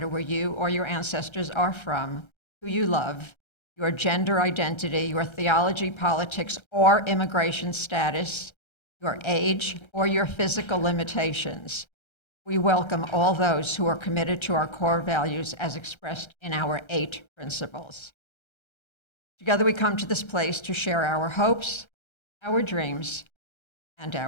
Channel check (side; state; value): right; late; 1.3 ms